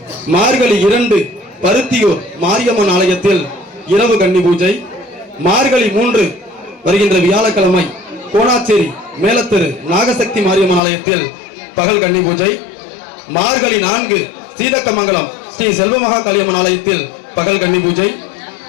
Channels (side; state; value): right; drops out; at 10.8 s